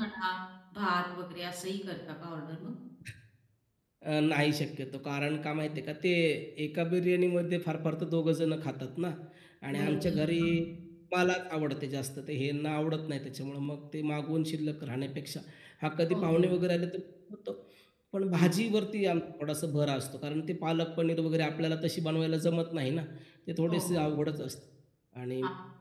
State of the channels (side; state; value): both; identical; correlation 1.00